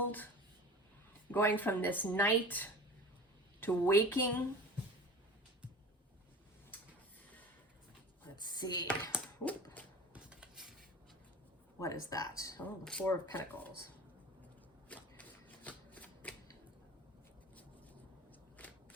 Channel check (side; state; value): both; normal; correlation 0.37